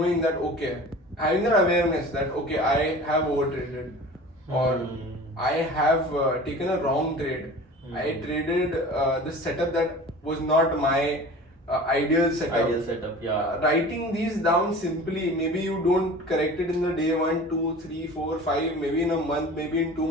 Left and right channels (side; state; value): both; normal; correlation 0.40